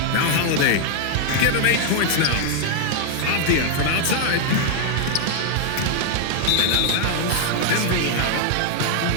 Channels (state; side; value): different; both; correlation 0.00